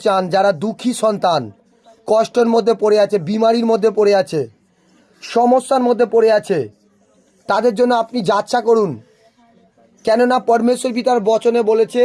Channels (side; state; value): both; identical; correlation 1.00